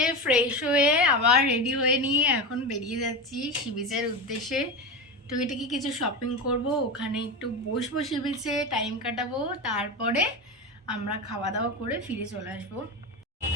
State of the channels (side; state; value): both; normal; correlation 0.20